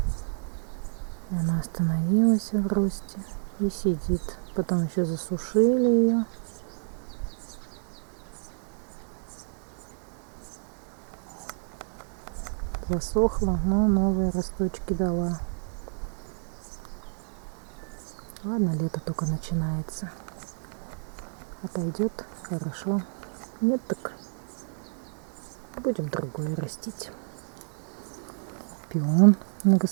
И она остановилась в росте и сидит. Потом еще засушили ее. Засохла, но новые росточки дала. Ладно, лето только начинается. Отойдет, хорошо. Нет, так будем другое растить. Пион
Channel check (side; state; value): left; silent; digital silence